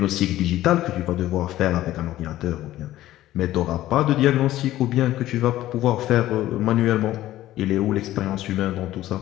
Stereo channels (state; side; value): quieter; right; 14.6 dB